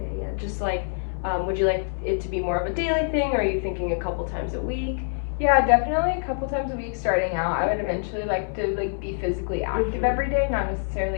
yeah, just like, would you like it to be more of a daily thing, or are you thinking a couple times a week? Yeah, definitely a couple times a week starting out. I would eventually like to be physically active every day, not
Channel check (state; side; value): silent; right; digital silence